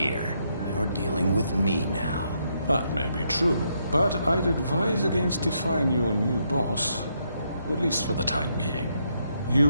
You're dealing with me now. That may be true, but I'd advise against defying your new boss, at least for the time being. You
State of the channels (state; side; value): inverted; both; correlation -0.77